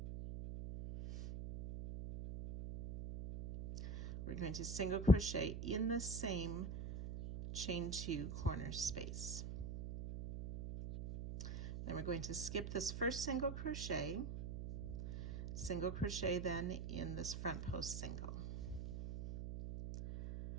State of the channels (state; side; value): noise; right; hum, 5 dB below the sound